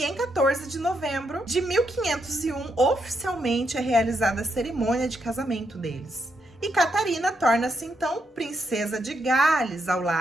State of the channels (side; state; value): both; normal; correlation 0.80